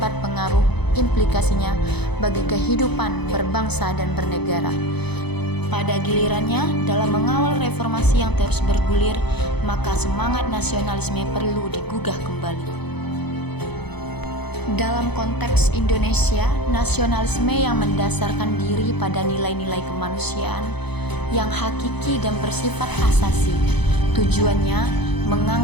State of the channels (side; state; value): right; late; 0.98 ms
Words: pengaruh implikasinya bagi kehidupan berbangsa dan bernegara. Pada gilirannya, dalam mengawal reformasi yang terus bergulir, maka semangat nasionalisme perlu digugah kembali. Dalam konteks Indonesia, nasionalisme yang mendasarkan diri pada nilai-nilai kemanusiaan yang hakiki dan bersifat asasi. Tujuannya